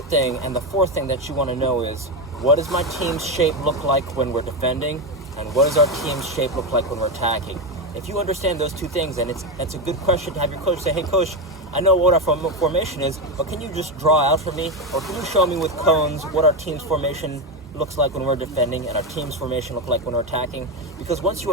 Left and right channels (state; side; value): normal; both; correlation 0.11